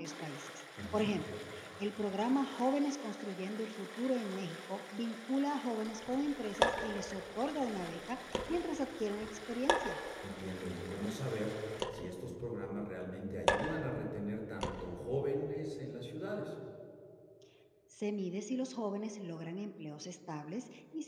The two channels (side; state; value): both; identical; correlation 1.00